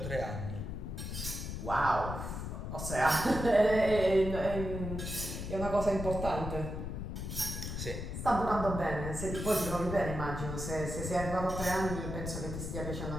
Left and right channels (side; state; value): left; noise; rumble, 5 dB below the sound